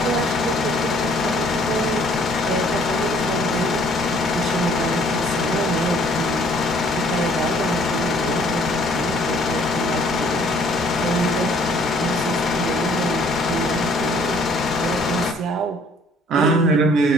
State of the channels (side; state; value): both; normal; correlation 0.59